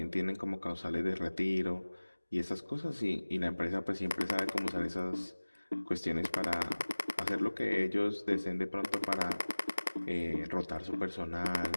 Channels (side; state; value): both; inverted; correlation -1.00